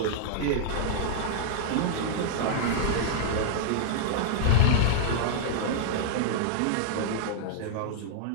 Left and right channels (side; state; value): both; different; correlation -0.01